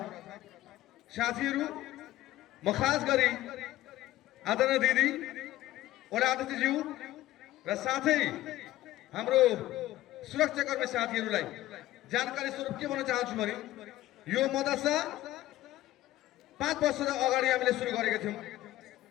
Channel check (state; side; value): quieter; right; 15.4 dB